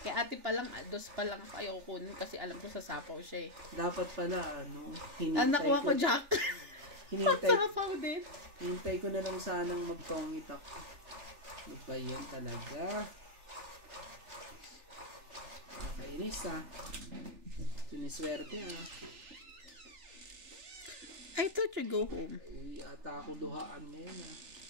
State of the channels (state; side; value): late; left; 3.4 ms